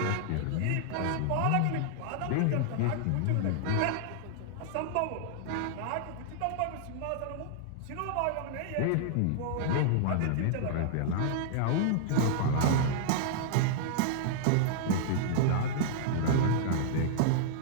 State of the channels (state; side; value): different; both; correlation -0.01